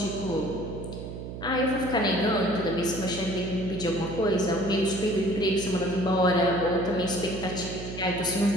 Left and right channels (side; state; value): right; noise; hum, 9 dB below the sound